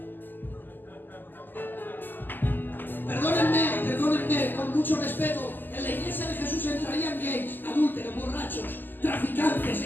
Perdónenme, con mucho respeto, en la iglesia de Jesús entrarían gays, adúlteros, borrachos, traficantes,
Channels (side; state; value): right; late; 0.090 ms